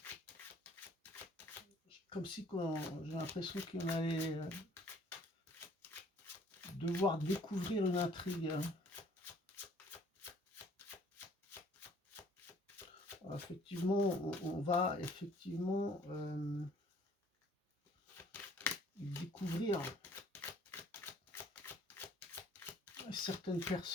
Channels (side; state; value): both; normal; correlation 0.57